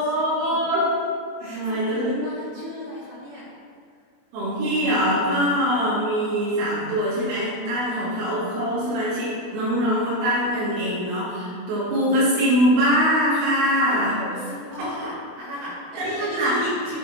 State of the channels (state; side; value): late; left; 28 ms